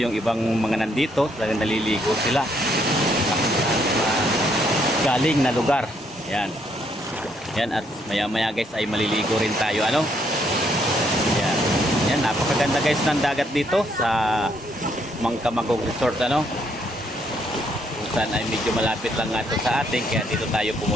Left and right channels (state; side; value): normal; both; correlation 0.71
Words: ibang mga nandito, talagang naliligo sila galing na lugar. Yan. Yan, at maya-maya, guys, ay maliligo rin tayo, Yan. Yan, napakaganda, guys, ng dagat dito sa Mangkamagong Resort, Saan ay medyo malapit lang nga ito sa atin, kaya dito tayo